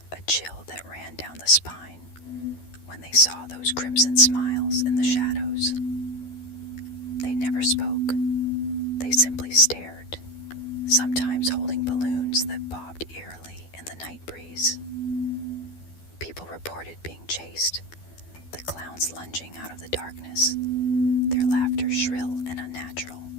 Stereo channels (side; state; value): right; late; 12 ms